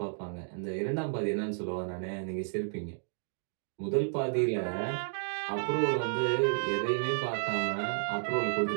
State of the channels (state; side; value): silent; left; digital silence